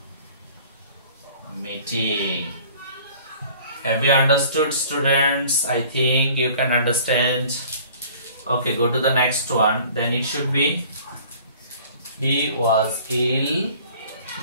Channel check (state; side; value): inverted; both; correlation -0.50